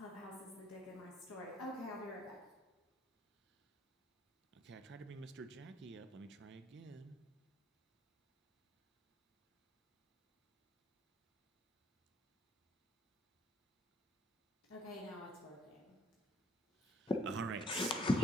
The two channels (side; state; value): both; normal; correlation 0.64